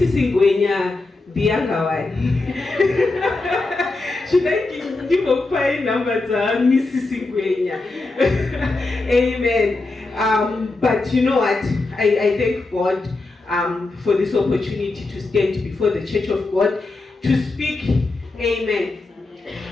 Ngwenya, the younger one. Should I give a fine number to Mrs. Ngwenya? Amen. But you know what? I thank God for this opportunity to stand before the Church of God to speak. Amen.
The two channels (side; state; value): right; quieter; 3.3 dB